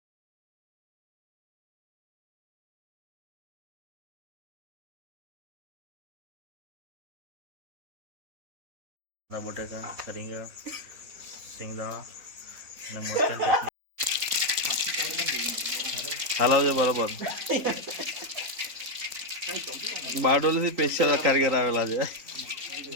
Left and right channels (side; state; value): left; late; 3.9 ms